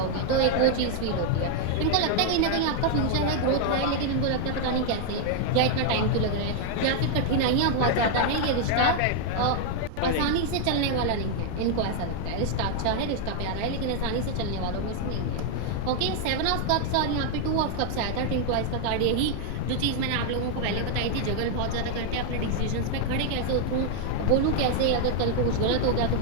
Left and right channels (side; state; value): both; different; correlation 0.00